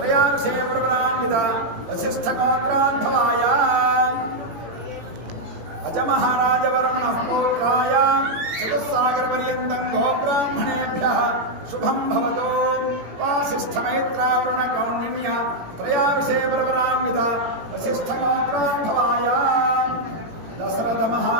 प्रवरान्वित वसिष्ठगोत्रान्धवाय अजमहाराजवर्मणः पौत्राय चतुस्सागरपर्यन्तं गोब्राह्मणेभ्यः शुभं भवतु। वासिष्ठमैत्रावरुणगौण्य त्रयार्षे प्रवरान्वित वसिष्ठगोत्रान्धवाय दशरथ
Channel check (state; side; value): late; left; 18 ms